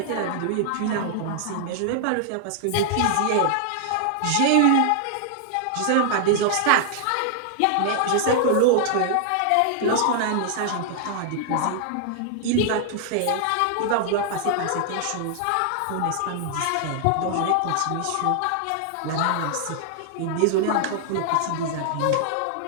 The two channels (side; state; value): both; different; correlation 0.00